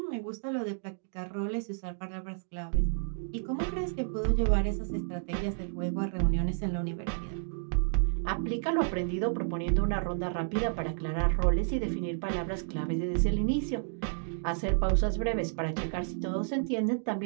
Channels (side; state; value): left; silent; digital silence